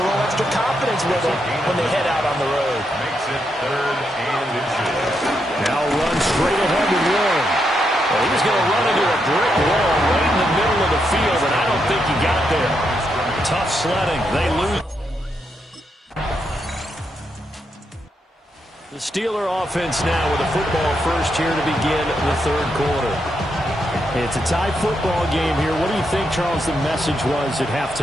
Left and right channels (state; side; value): normal; both; correlation 0.81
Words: little extra confidence with them when they head out on the road. Makes it 3rd and inches. Now run straight ahead with Warren. Well, he was going to run into a brick wall right in the middle of the field, and I don't think he got there. Tough sledding. They lose. The Steeler offense now with a football first here to begin the 3rd quarter. It's a tie football game here. What do you think, Charles, the message was at